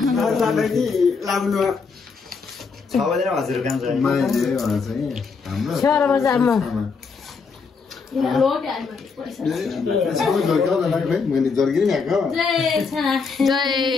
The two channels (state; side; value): quieter; right; 5.1 dB